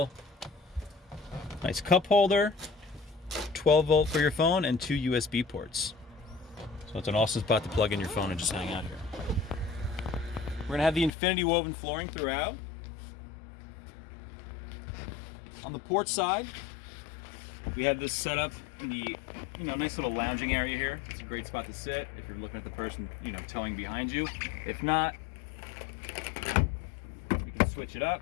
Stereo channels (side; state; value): right; drops out; at 11.1 s